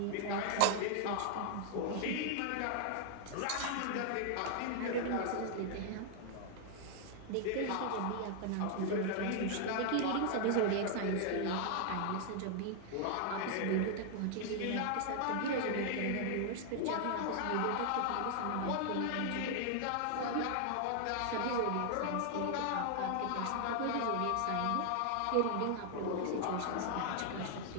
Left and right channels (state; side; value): different; both; correlation 0.00